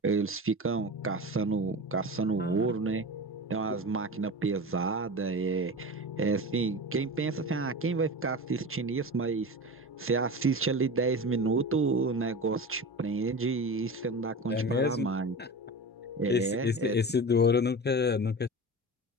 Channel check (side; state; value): both; normal; correlation 0.29